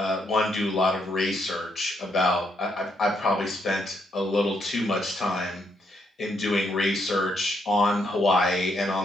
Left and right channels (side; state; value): both; normal; correlation 0.75